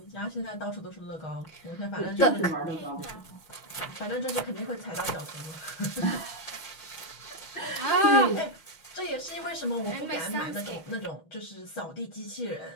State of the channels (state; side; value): late; right; 6.2 ms